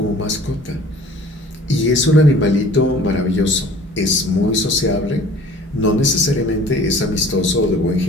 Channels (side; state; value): both; normal; correlation 0.48